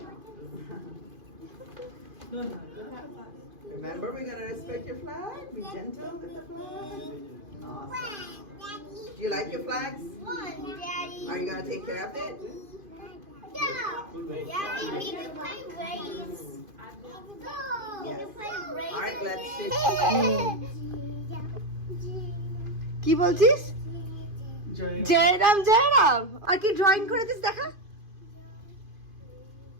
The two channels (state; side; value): late; left; 2.5 ms